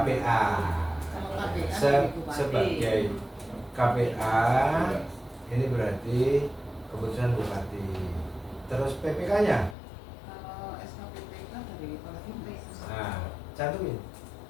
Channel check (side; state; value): right; drops out; at 9.8 s